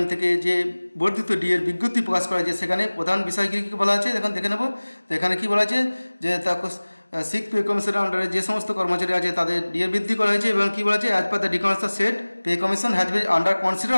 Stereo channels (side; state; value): both; inverted; correlation -1.00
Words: থেকে যে বর্ধিত ডিএর বিজ্ঞপ্তি প্রকাশ করা হয়েছে, সেখানে প্রধান বিষয় কী কী বলা আছে এখন দেখে নেব। তো এখানে কী বলা আছে যে সিক্স পে কমিশনের আন্ডারে যে সমস্ত কর্মচারী আছে তাদের ডিএ বৃদ্ধি করা হয়েছে এবং কী বলা আছে, as per the documents set pay commission has been under